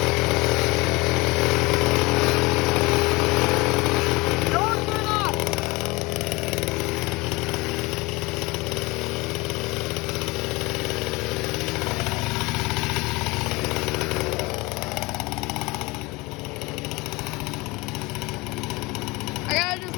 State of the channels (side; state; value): right; quieter; 23.6 dB